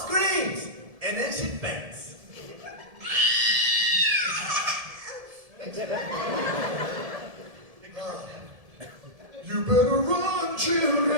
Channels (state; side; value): late; left; 1.7 ms